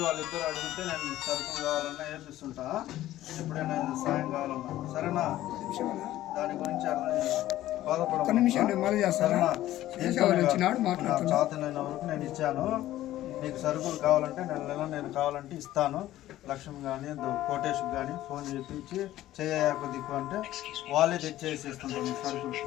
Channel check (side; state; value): right; quieter; 14.4 dB